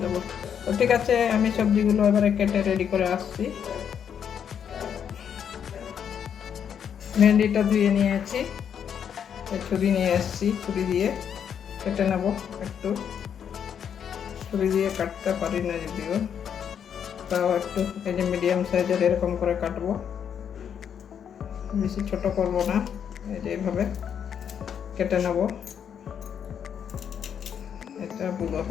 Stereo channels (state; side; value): quieter; right; 8.2 dB